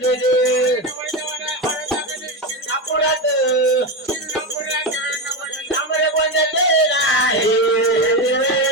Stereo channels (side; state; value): both; normal; correlation 0.14